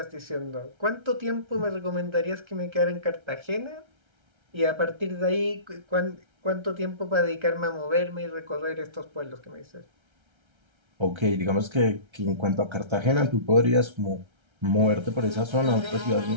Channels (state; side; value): late; left; 1.3 ms